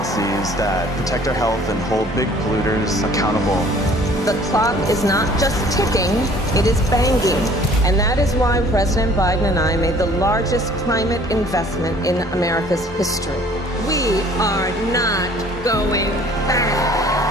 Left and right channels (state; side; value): normal; both; correlation 0.54